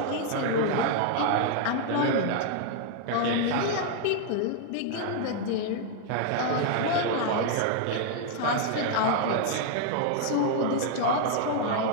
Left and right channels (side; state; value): both; different; correlation 0.00